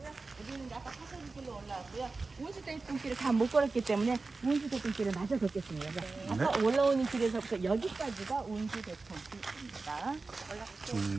우리는 아까 사설길로 올라왔고요. 운수대통길을 다 못 걸었기 때문에 운수대통길을 마저 걷겠습니다. 아까 올라오는 길에서부터 여기까지가 운수대통길입니다.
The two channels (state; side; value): quieter; left; 3.8 dB